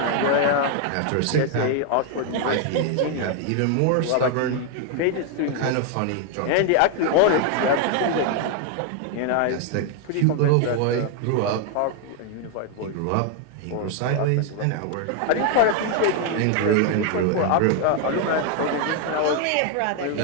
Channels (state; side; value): different; both; correlation 0.00